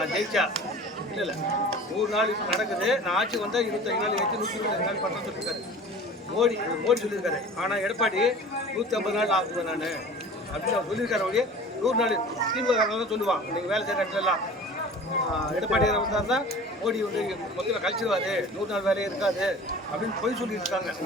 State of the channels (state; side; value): normal; both; correlation 0.41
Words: ஜெயிச்சா இல்ல 100 நாள் நடக்குது, நான் ஆட்சி வந்தா 25 நாள் ஏற்றி 125 நாள் பண்ண சொல்லியிருக்காரு மோடி சொல்லியிருக்காரு. ஆனா எடப்பாடி 150 நாள் ஆகுது நான் அப்படின்னு அவர் சொல்லியிருக்காரு. அவரு 100 நாள் திமுக தான் சொல்லுவான். நீங்க வேலை செய்யற இடத்துல எல்லாம் எடப்பாடியார் வந்தாருன்னா மோடி வந்து மொத்தத்தில் கழிச்சிருவாரு, 100 நாள் வேலையே இருக்காது அப்படின்னு போய் சொல்லிட்டு இருக்காங்க.